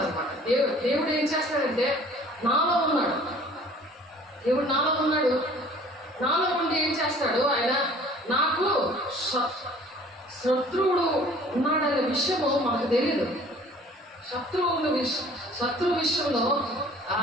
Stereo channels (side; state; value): both; normal; correlation 0.51